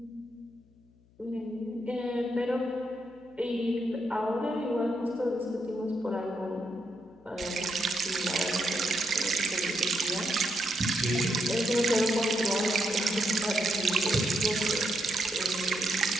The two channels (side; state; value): left; noise; hum, 30 dB below the sound